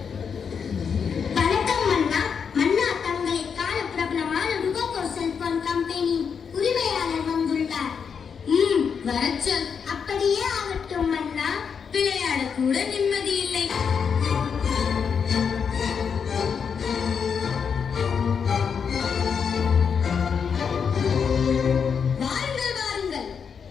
கூட நிம்மதி இல்லை. வாருங்கள் வாருங்கள்.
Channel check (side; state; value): right; quieter; 6.6 dB